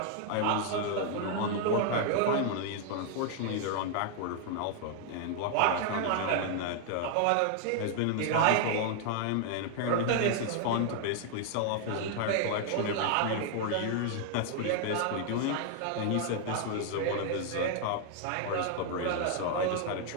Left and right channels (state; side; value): different; both; correlation 0.00